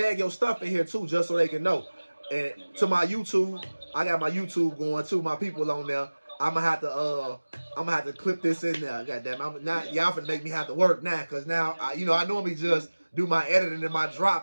your stuff in here too, just so they can know. And to my YouTube, I got my YouTube going too. My people on there. I'm gonna have to clip this in there. Goddamn, I'm not y'all finna make me have to work now, cause now I normally just do my editing and my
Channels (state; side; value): inverted; both; correlation -1.00